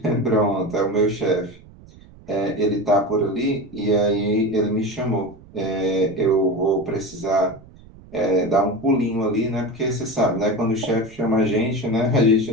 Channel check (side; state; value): right; noise; rumble, 22 dB below the sound